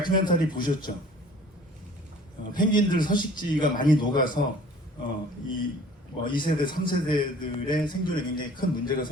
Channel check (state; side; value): normal; both; correlation 0.50